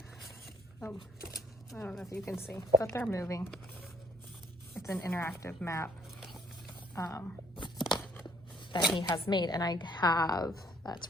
I don't know if you can see, but they're moving. It's an interactive map that he has made, and I have, that's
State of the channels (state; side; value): normal; both; correlation 0.63